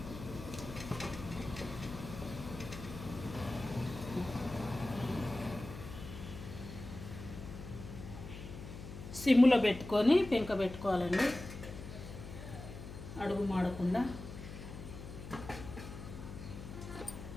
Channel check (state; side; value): noise; left; hum, 11 dB below the sound